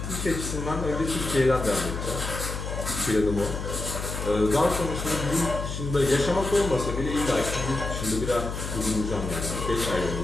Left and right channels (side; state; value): left; noise; hum, 5 dB below the sound